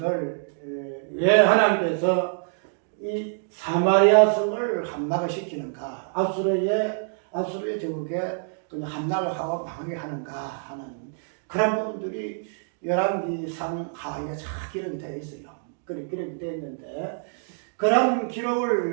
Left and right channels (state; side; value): silent; left; digital silence